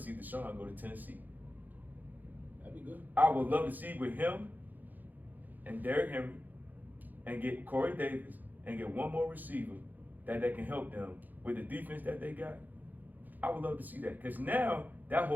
Deshaun go to Tennessee. That'd be good. I would love to see with him and Derrick Henry and get Corey Davis and get one more receiver that can help them with the defense that they got. I would love to see that because now that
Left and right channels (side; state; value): left; late; 0.084 ms